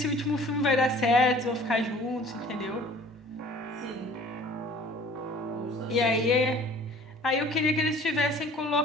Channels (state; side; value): normal; both; correlation 0.49